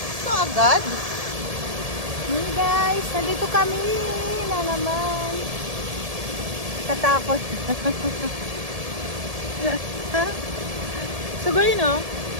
ito agad. Hey guys, nandito kami na naman. Katakot. Sugay no?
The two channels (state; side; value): late; left; 1.7 ms